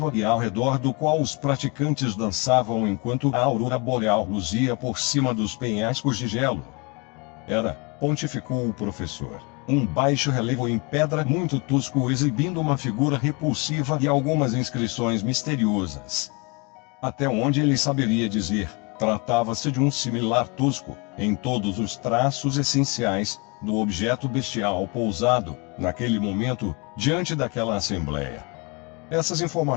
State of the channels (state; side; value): quieter; right; 29.5 dB